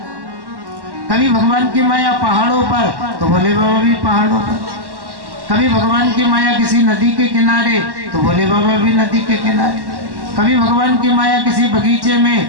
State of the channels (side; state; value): left; late; 1.1 ms